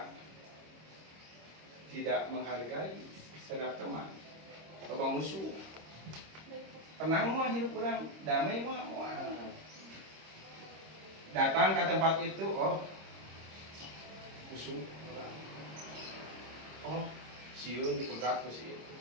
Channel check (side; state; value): left; late; 26 ms